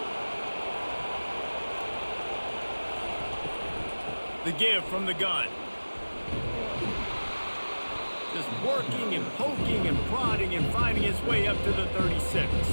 The give from the gun. Just working and poking and prodding and finding his way up to the 36.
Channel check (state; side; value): inverted; both; correlation -1.00